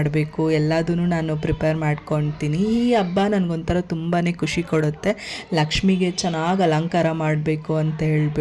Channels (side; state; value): both; identical; correlation 1.00